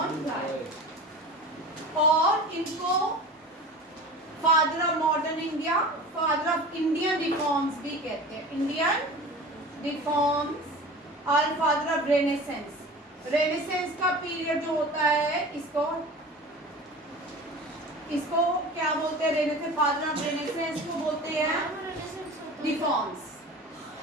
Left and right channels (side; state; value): both; normal; correlation 0.36